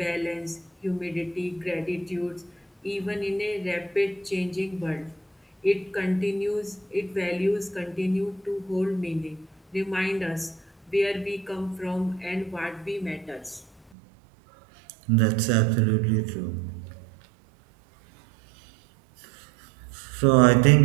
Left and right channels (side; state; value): left; drops out; at 13.9 s